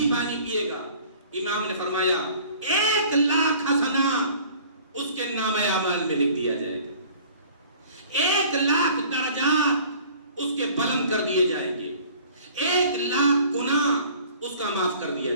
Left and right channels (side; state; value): both; inverted; correlation -0.50